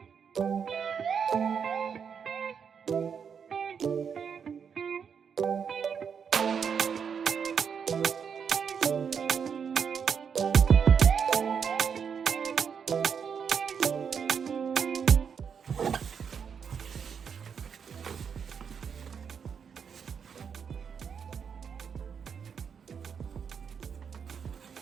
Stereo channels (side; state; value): left; quieter; 6.9 dB